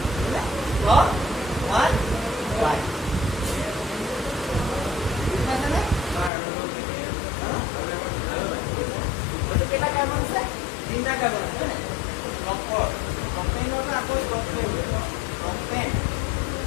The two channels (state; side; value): drops out; right; at 6.3 s